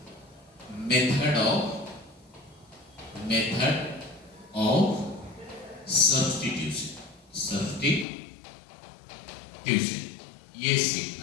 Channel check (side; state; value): right; drops out; at 8.1 s